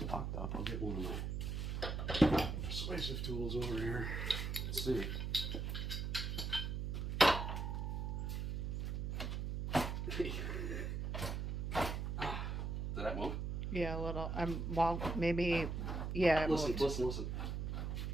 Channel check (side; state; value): right; noise; hum, 2 dB below the sound